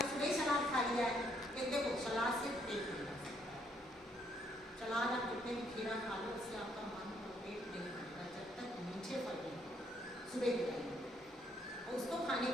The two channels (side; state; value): both; normal; correlation 0.70